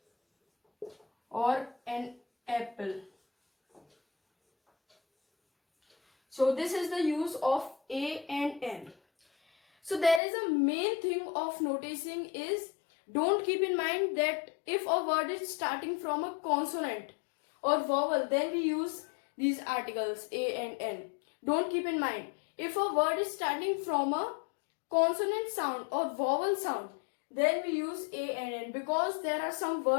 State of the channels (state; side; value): drops out; right; at 10.2 s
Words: or an apple. So this is the use of a and n. So there is a main thing of noticing is, don't keep in mind that if a word is starting from a consonant or vowel, then we use these articles a and n. Don't keep in mind, if a word is starting from a consonant sound or vowel sound, then we use a and n, because there are some